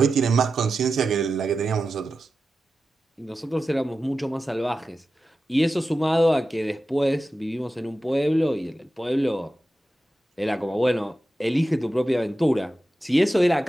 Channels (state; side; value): normal; both; correlation 0.92